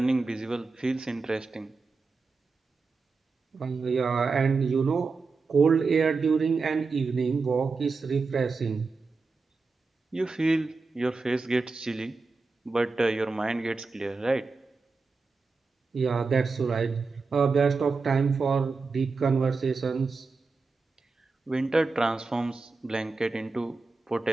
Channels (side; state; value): left; quieter; 4.2 dB